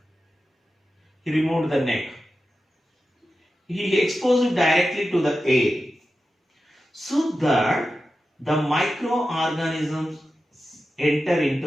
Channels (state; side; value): normal; both; correlation 0.92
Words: He removed the neck. He exposed it directly to the air, so that the microorganisms enter